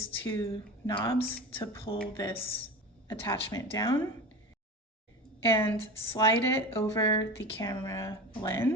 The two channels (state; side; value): normal; both; correlation 0.30